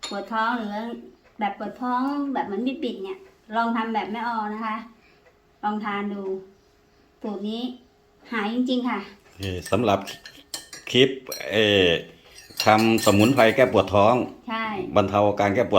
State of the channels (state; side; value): identical; both; correlation 1.00